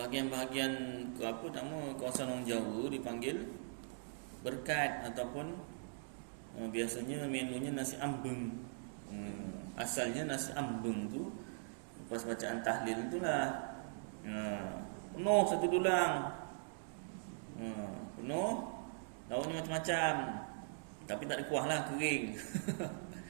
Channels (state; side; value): silent; left; digital silence